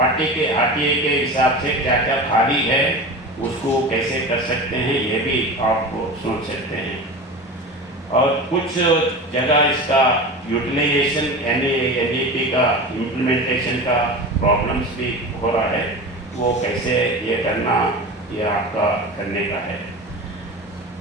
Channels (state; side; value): normal; both; correlation 0.30